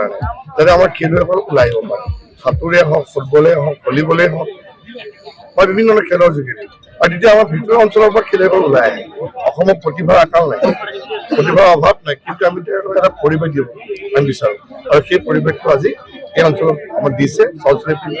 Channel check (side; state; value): both; identical; correlation 1.00